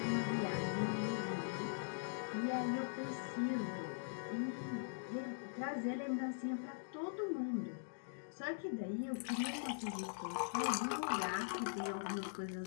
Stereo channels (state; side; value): silent; right; digital silence